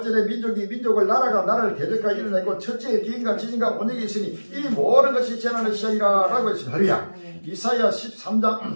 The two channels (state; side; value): inverted; both; correlation -1.00